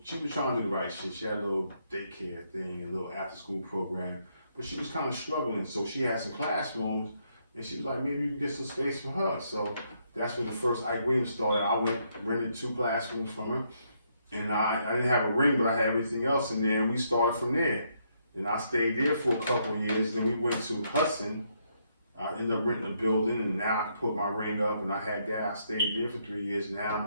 trying to do the right shit. She had a little daycare thing, a little after school program, but she was kind of struggling. So she had some classrooms, and she was like, maybe you can get some space for her. So that's when the first Ike Williams started. I rented 2 classrooms from her, and I didn't have a ring, but I had everything else in there, and we started from there. And I stayed there for a couple of years. Then we went to Hudson. I ended up renting a building, and now I can put my ring up, and I had that. I stayed there for 3 years. Now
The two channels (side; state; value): both; inverted; correlation -0.74